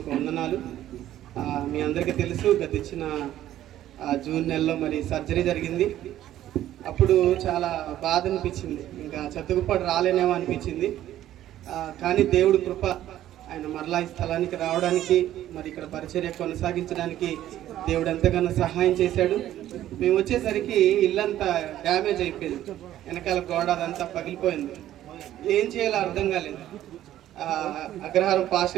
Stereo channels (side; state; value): left; quieter; 12.8 dB